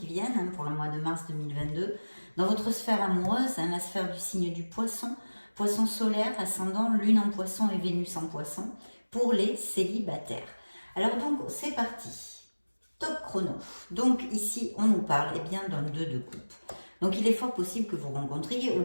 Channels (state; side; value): inverted; both; correlation -1.00